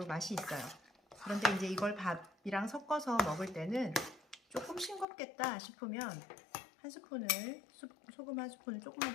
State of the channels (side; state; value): right; drops out; at 5.1 s